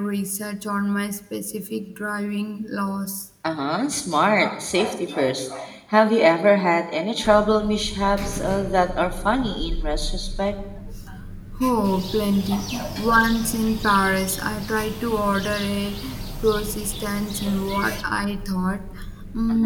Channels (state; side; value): identical; both; correlation 1.00